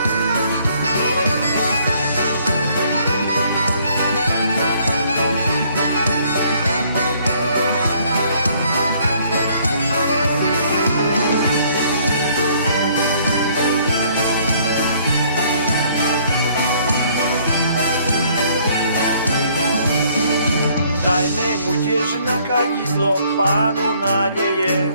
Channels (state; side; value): inverted; both; correlation -0.62